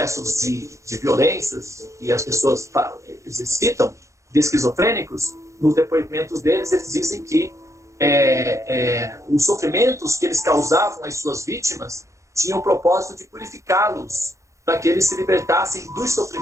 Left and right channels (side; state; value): left; late; 0.15 ms